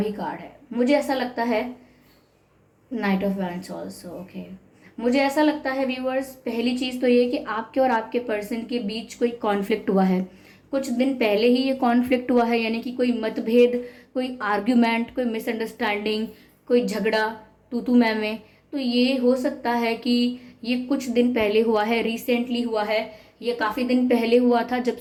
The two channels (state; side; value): identical; both; correlation 1.00